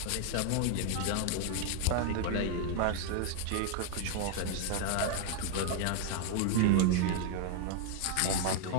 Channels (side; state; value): both; different; correlation 0.00